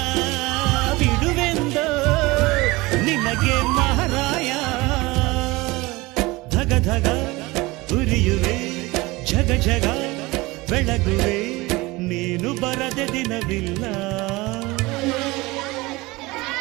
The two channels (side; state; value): left; quieter; 21.9 dB